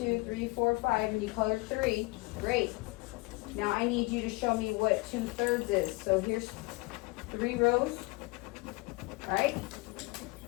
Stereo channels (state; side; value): quieter; right; 25.4 dB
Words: 3, 4, 5, and you colored 3. Great. Now I need you to show me what 2/3 is. So here's 3 rows, right?